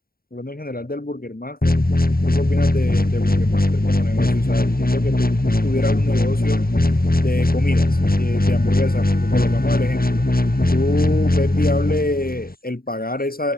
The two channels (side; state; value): right; late; 0.43 ms